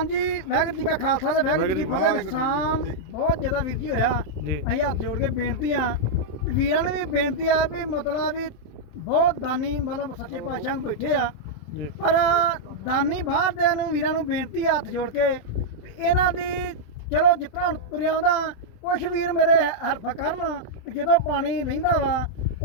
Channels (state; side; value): late; right; 27 ms